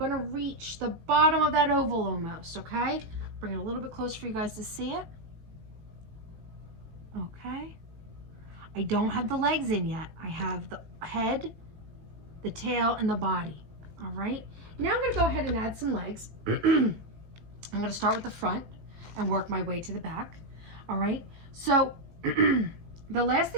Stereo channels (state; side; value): late; left; 18 ms